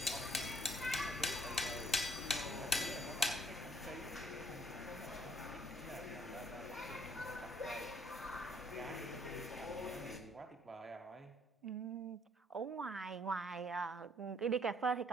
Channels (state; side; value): normal; both; correlation 0.65